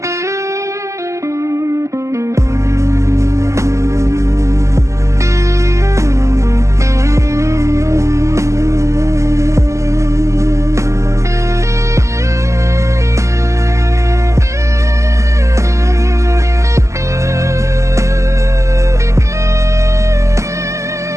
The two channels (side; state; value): left; late; 0.14 ms